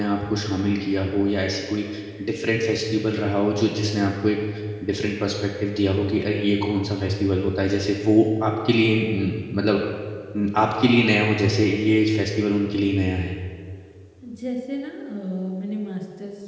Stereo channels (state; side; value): identical; both; correlation 1.00